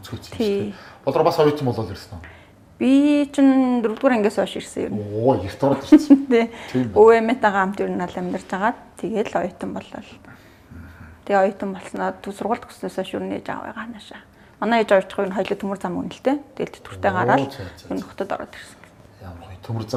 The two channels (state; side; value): identical; both; correlation 1.00